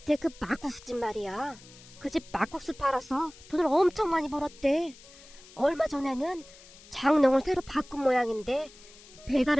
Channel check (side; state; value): left; noise; hiss, 21 dB below the sound